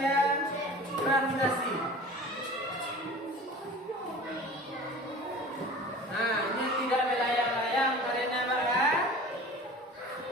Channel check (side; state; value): both; normal; correlation 0.40